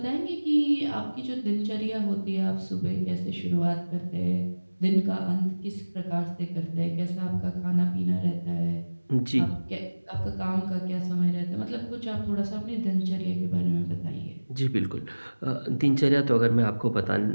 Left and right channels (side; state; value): both; inverted; correlation -1.00